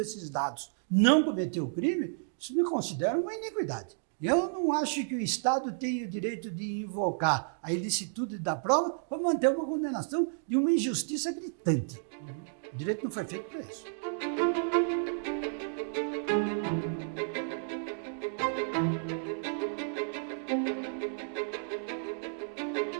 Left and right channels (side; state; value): left; silent; digital silence